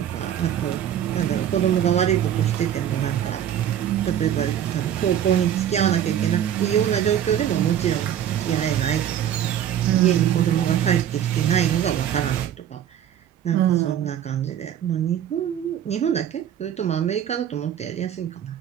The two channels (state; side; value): quieter; left; 10.2 dB